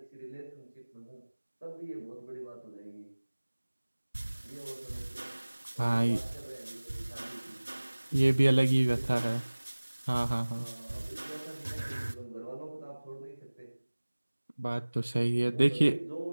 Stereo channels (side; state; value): both; inverted; correlation -1.00